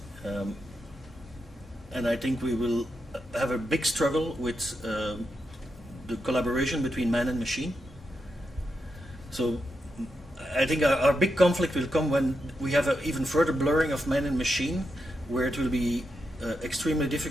And I think we will have a big struggle with the collaboration between man and machine. So I think our big conflict will come when we have an even further blurring of man and machine, where it will be extremely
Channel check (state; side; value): normal; both; correlation 0.85